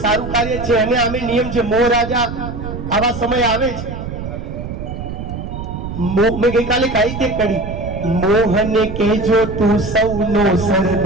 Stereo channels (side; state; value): right; noise; rumble, 7 dB below the sound